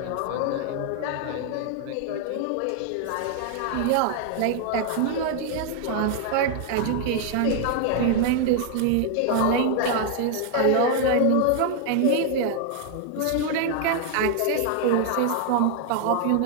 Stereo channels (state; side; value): different; both; correlation 0.00